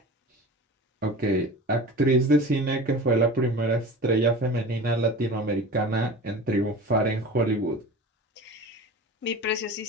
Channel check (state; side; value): normal; both; correlation 0.35